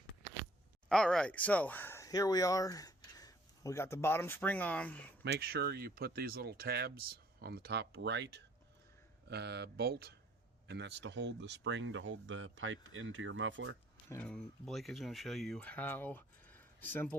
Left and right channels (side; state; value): both; normal; correlation 0.59